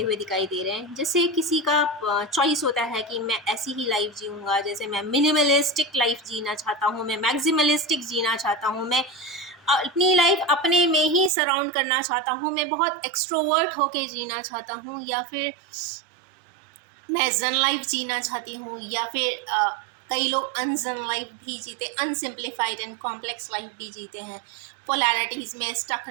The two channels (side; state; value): left; drops out; at 11.3 s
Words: हुए दिखाई दे रहे हैं। जैसे किसी का चॉइस होता है कि मैं ऐसी ही लाइफ जीऊँगा, जैसे मैं मिनिमलिस्टिक लाइफ जीना चाहता हूँ, मैं मैक्सिमलिस्टिक जीना चाहता हूँ, मैं अपनी लाइफ अपने में ही सराउंड करना चाहता हूँ, मैं बहुत एक्सट्रोवर्ट होके जीना चाहता हूँ, या फिर मैं जन लाइफ जीना चाहती हूँ, या फिर कई लोग अनजन लाइफ भी जीते, अनसिम्प्लीफाइड एंड कॉम्प्लेक्स लाइफ भी जीते हैं, पोलैरिटीज़ में स्टक